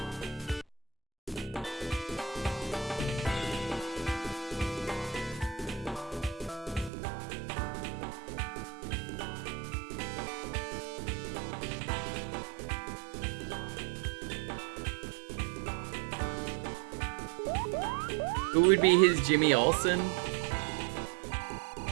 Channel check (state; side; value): drops out; left; at 6.9 s